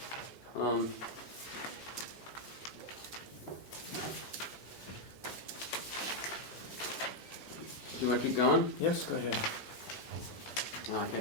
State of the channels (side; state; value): both; normal; correlation 0.00